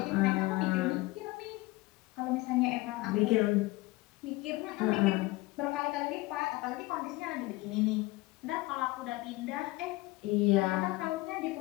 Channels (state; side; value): quieter; right; 20.9 dB